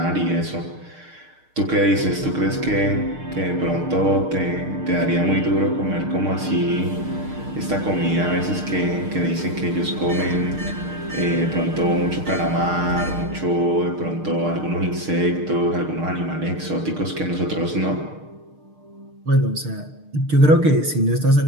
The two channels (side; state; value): left; late; 6.5 ms